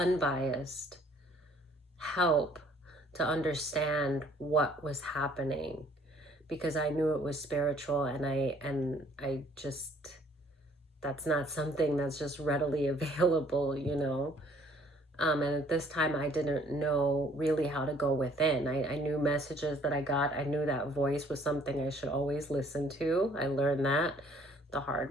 help to understand what was happening, because I knew it was spiritual, and I just, that's not something that's just readily available, you know. And at this time, I didn't know really how to go within. I knew messages that I got. I knew that voice was something I should always listen to. I learned that the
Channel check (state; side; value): normal; both; correlation 0.59